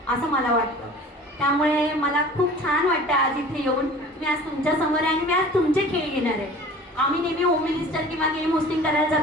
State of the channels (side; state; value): both; normal; correlation 0.44